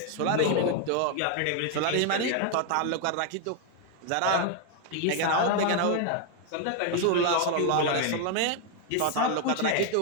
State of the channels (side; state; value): both; different; correlation 0.00